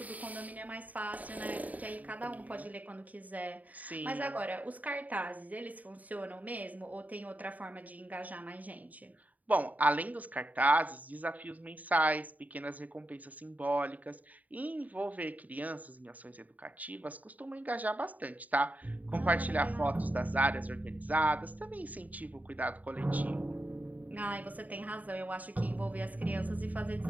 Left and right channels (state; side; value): late; left; 0.074 ms